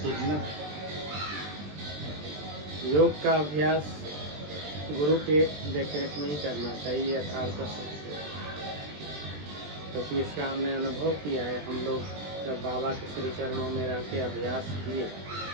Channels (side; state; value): left; late; 20 ms